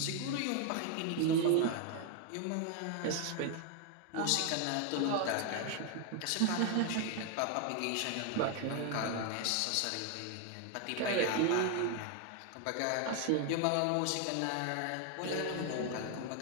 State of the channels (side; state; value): both; different; correlation 0.01